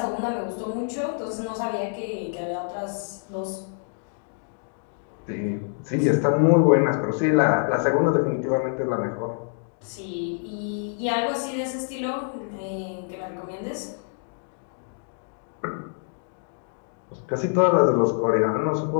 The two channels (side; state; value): right; silent; digital silence